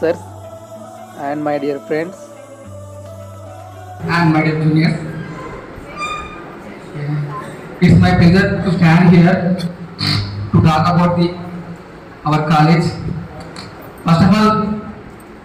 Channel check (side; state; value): both; identical; correlation 1.00